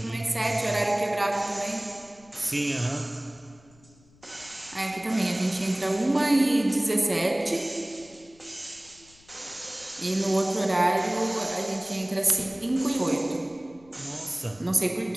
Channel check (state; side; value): noise; left; rumble, 28 dB below the sound